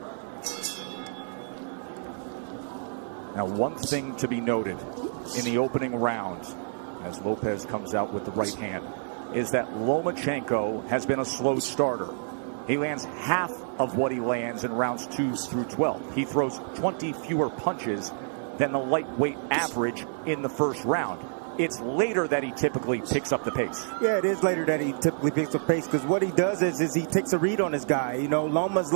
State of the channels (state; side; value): silent; left; digital silence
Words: Now, one thing to be noted in the opening round, as Lopez comes out with the right hand, is that Lomachenko has been a slow starter. He lands half of what he lands in rounds 2 through 12. He throws 20 fewer punches than the lightweight average in the first round. It's later that he typically picks up the pace. Yeah, it is later that he typically picks up pace, because what he does is he takes a read on his guy. You know, Loma's